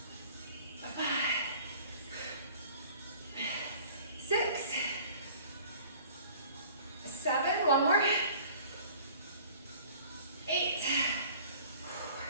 5. 6. 7. 1 more. 8.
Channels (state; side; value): inverted; both; correlation -0.48